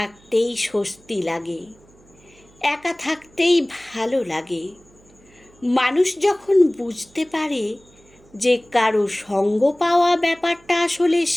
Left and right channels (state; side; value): noise; right; hum, 28 dB below the sound